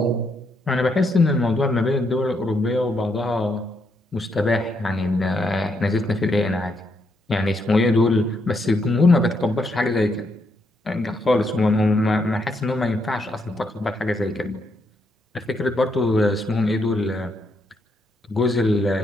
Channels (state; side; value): normal; both; correlation 0.78